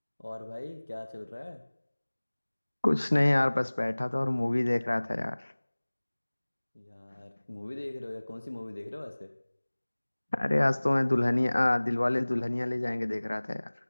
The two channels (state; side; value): inverted; both; correlation -1.00